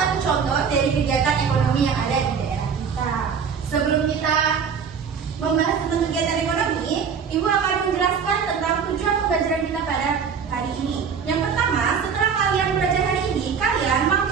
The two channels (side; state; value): left; quieter; 6.5 dB